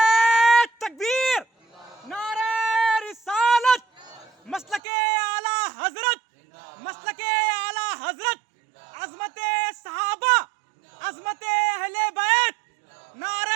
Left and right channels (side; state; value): left; drops out; at 4.8 s